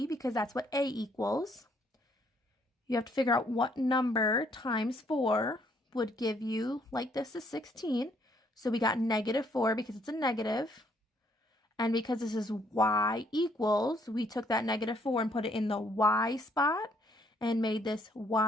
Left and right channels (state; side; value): normal; both; correlation 0.68